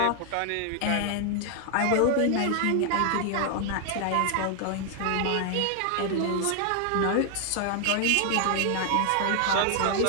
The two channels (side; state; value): both; different; correlation 0.00